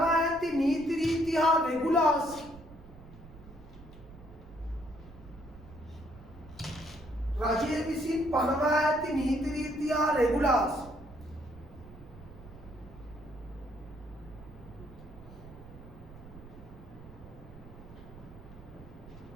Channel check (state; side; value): noise; right; rumble, 18 dB below the sound